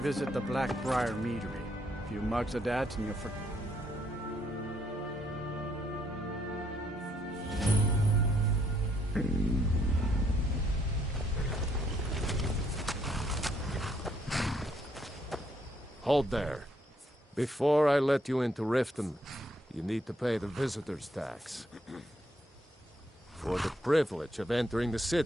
the Blackbriar Meadery. A few mugs of that, and you'll forget. Hold there. Before I let you into Riften, you need to pay the visitor's tax. For the privilege of entering the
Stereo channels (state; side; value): normal; both; correlation 0.71